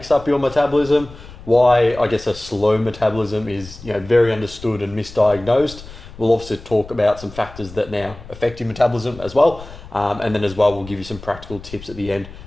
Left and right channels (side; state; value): left; noise; rumble, 17 dB below the sound